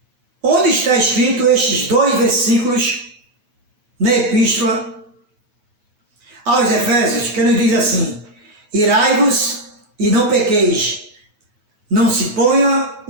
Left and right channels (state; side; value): late; left; 9.4 ms